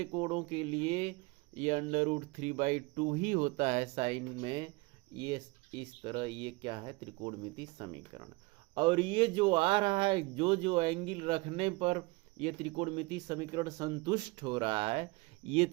कोणों के लिए ये √3/2 ही होता है साइन में। ये इस तरह ये क्या है? त्रिकोणमितीय समीकरण। और ये जो आ रहा है, जो एंगल रखने पर ये त्रिकोणमितीय समीकरण संतुष्ट हो रहा है, ये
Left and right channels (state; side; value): quieter; left; 24.6 dB